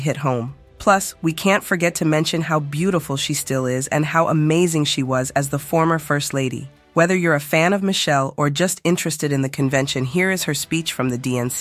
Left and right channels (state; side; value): identical; both; correlation 1.00